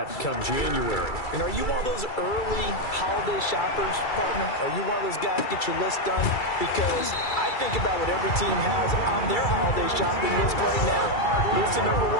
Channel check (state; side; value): late; right; 2.3 ms